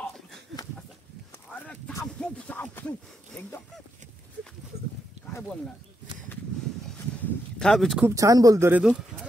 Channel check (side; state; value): both; normal; correlation 0.82